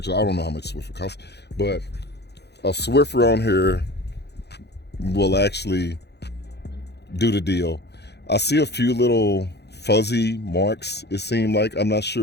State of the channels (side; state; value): right; late; 0.49 ms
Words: I don't know how much Swiffer costs, but a Swiffer on here will actually do the deal. I see a few little fuzzy marks, it seemed like. I'm not